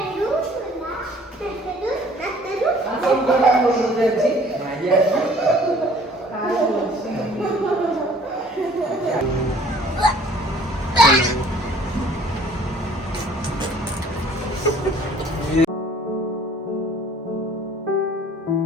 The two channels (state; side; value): normal; both; correlation 0.54